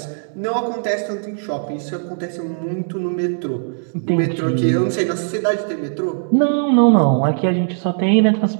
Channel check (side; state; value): left; silent; digital silence